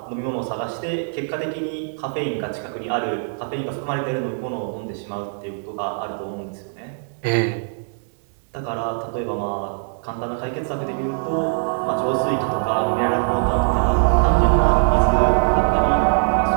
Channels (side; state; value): left; silent; digital silence